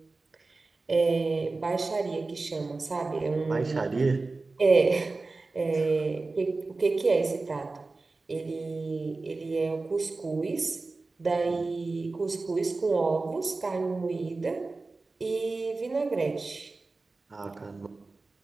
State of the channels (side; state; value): left; quieter; 3.6 dB